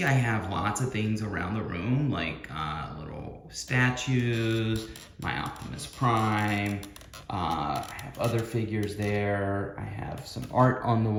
I have lots of things around the room, like little statues, my Optimus Prime. I have other figures there. I have some art on the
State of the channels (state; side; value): identical; both; correlation 1.00